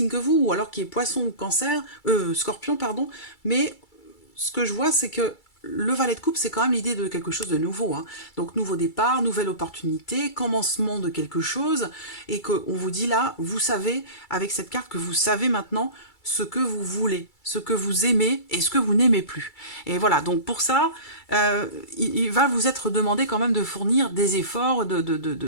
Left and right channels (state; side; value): late; right; 2.3 ms